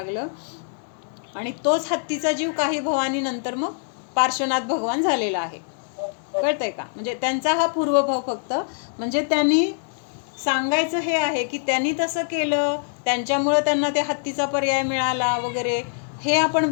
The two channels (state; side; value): silent; right; digital silence